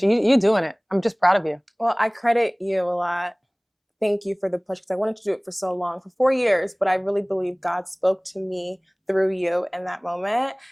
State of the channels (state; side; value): identical; both; correlation 1.00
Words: you. You're doing it. I'm just proud of you. Well, I credit you a lot. Thank you for the push, because I wanted to do it for so long, for 4 years, but I really believe God spoke to me through you in that moment.